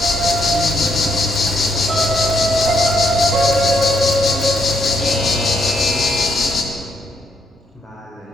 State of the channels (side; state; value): both; normal; correlation 0.75